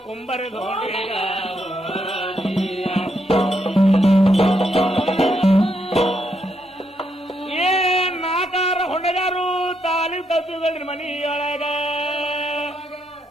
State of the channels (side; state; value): both; normal; correlation 0.78